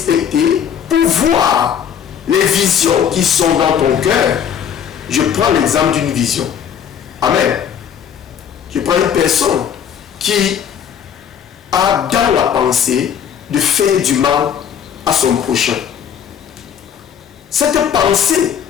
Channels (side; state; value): right; quieter; 8.4 dB